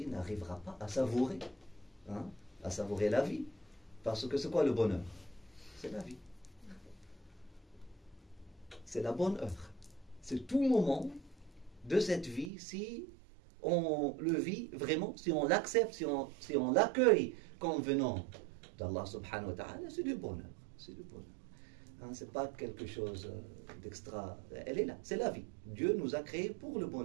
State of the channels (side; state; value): left; drops out; at 12.5 s